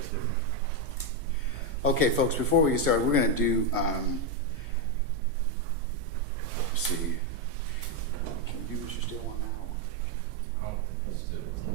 Okay, folks, before we get started, we're going to do, let's see. Can you do what you still want now? Let's do it.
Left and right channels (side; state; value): both; normal; correlation 0.05